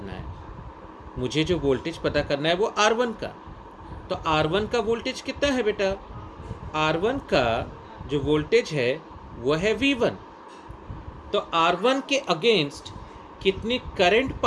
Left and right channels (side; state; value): both; identical; correlation 1.00